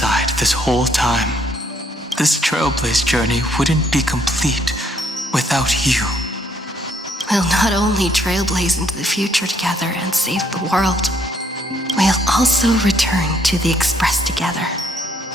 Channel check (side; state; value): both; normal; correlation 0.68